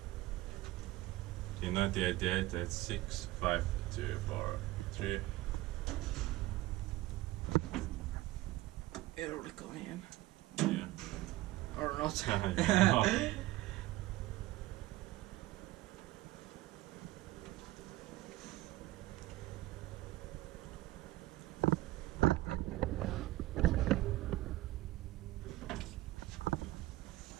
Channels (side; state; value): left; quieter; 17.5 dB